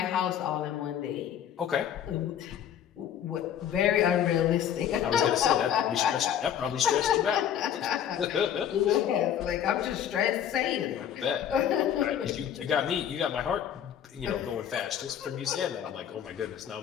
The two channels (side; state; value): right; quieter; 9.6 dB